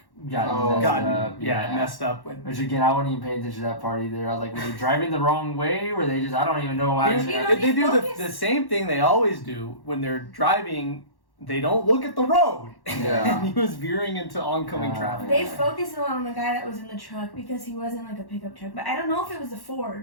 messed up. Which again, I wasn't even paying attention to that part either. I was like, were they driving the wrong way? Were they just? I don't even know why. They do the same thing they always do when they're driving. They don't look at the road. Yeah. And he was veering into oncoming traffic. They focused a lot on the guy that was in the truck because he wasn't a pickup truck. But I don't know if it was a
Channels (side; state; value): right; late; 1.1 ms